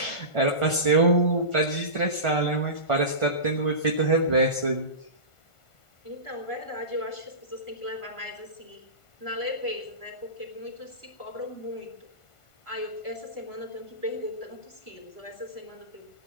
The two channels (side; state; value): right; late; 1.5 ms